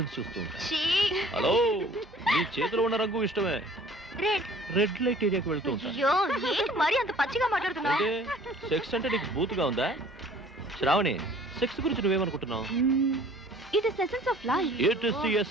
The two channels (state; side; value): normal; both; correlation 0.52